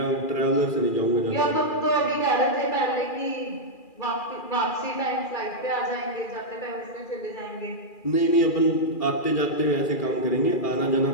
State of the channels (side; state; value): right; late; 2.4 ms